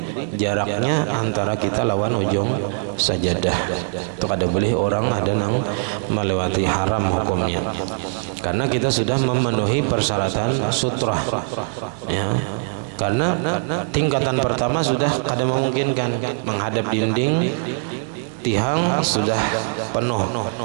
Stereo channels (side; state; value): left; silent; 65 dB below the other